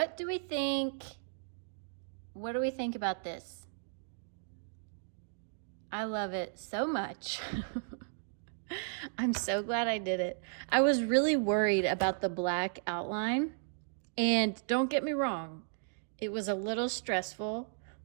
do we think? What do we think about this? I love it so much. I'm so glad I did it. I was really worried about the black outline, and don't get me wrong, it was a little stressful,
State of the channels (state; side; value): silent; left; digital silence